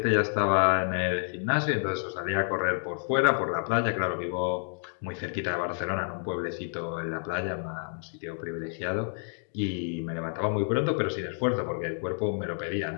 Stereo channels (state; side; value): silent; right; 58 dB below the other